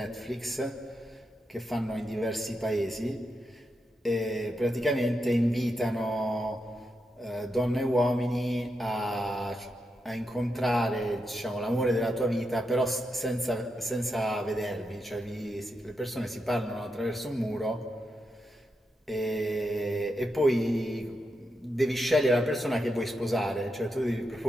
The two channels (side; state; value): both; normal; correlation 0.85